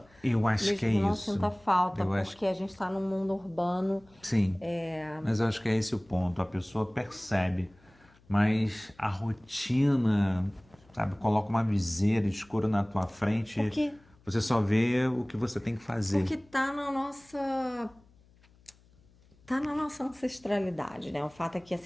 Eu acho Mesmo que é que não isso. sinta falta, Eu acho porque a gente está num mundo urbano. Sim, mas eu acho que é esse o ponto. A pessoa percebe, mas a rotina, sabe, coloca uma viseira escura na tua frente, Porque, você só vê o que você tem que fazer. porque tá na nossa ancestralidade, né? O fato é que,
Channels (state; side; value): noise; left; hum, 29 dB below the sound